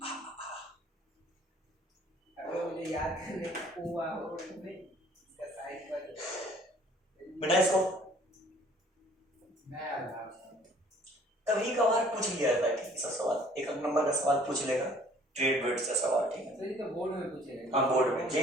मुझे याद करने हुआ हो इसका साइड पर बेटा इसको नया था। कभी कभार पूछ लिया जाता है, ठीक, सब सवाल 1 नंबर का सवाल पूछ लेगा, ट्रेड वेट्स का सवाल, ठीक है। सर ये तो बोर्ड में पूछेगा। हाँ बोर्ड में,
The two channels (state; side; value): normal; both; correlation 0.55